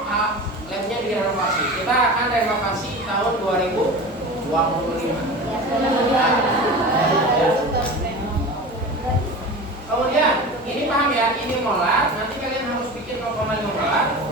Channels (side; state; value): both; normal; correlation 0.32